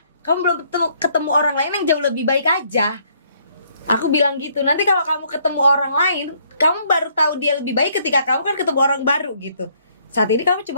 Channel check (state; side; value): inverted; both; correlation -0.67